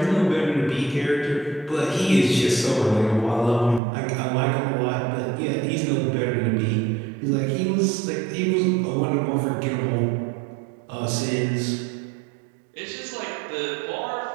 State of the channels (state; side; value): drops out; left; at 3.8 s